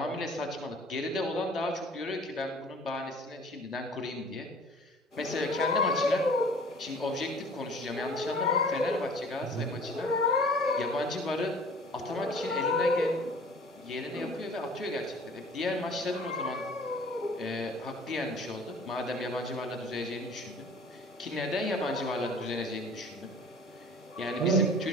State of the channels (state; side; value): normal; both; correlation 0.48